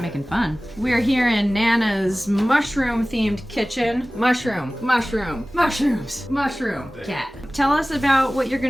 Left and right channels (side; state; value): both; normal; correlation 0.98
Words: making fun. We're here in Nana's mushroom-themed kitchen. Mushroom. Cat. Tell us about what you're